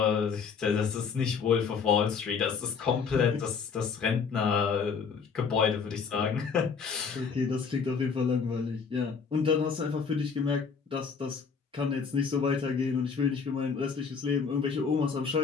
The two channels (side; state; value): right; quieter; 5.8 dB